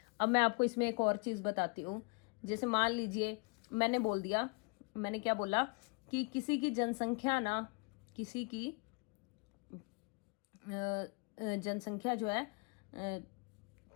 अब मैं आपको इसमें एक और चीज बताती हूँ। जैसे मान लीजिए मैंने बोल दिया, मैंने क्या बोला कि किसी की जनसंख्या ना, किसी की जनसंख्या जो है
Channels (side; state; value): right; quieter; 32.5 dB